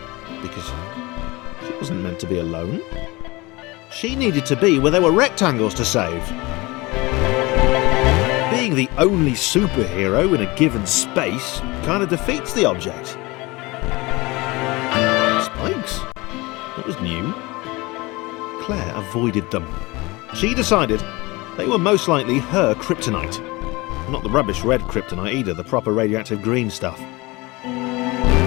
because she wasn't meant to be alone. She needed to be where there were rectangles to save. Being the only superhero in a given space kind of defeats the object. Spikes? That was new. Claire avoided them. She decided they were most likely her kryptonite. Not the rubbish red kryptonite either, the proper radioactive green stuff.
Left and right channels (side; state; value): right; quieter; 23.1 dB